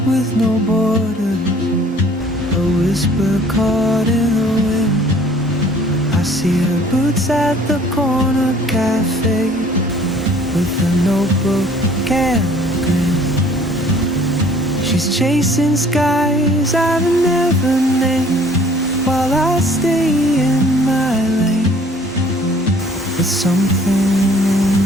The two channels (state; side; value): normal; both; correlation 0.55